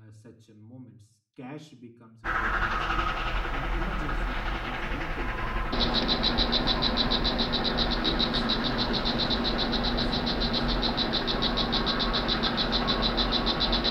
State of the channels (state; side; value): identical; both; correlation 1.00